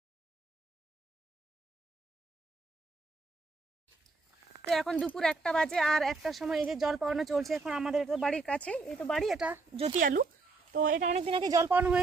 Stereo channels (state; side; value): quieter; left; 3.8 dB